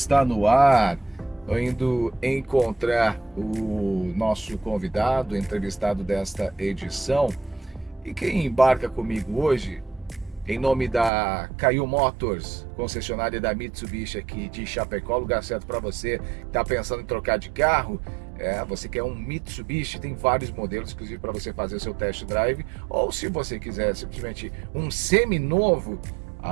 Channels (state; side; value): drops out; left; at 11.1 s